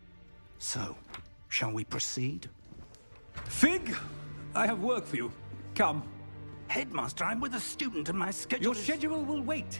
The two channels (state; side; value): inverted; both; correlation -1.00